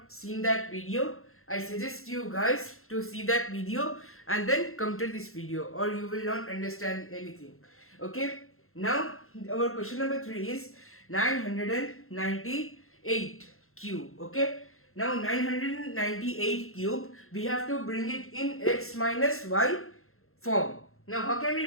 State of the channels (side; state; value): right; late; 0.62 ms